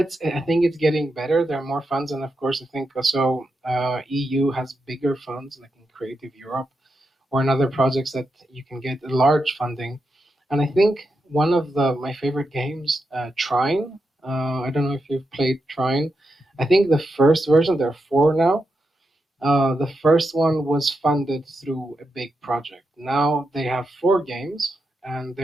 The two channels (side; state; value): both; normal; correlation 0.86